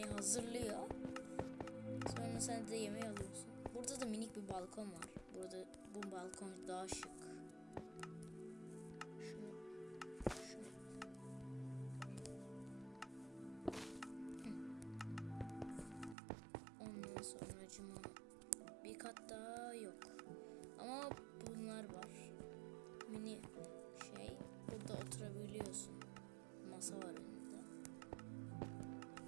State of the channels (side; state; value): left; drops out; at 16.2 s